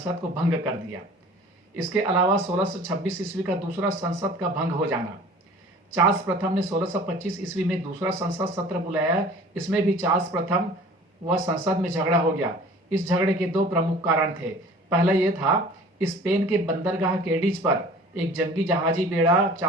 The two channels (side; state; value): both; normal; correlation 0.46